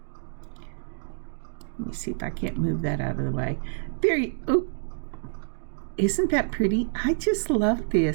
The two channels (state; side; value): silent; left; digital silence